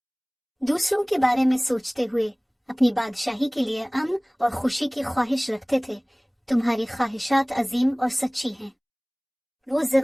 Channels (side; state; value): both; identical; correlation 1.00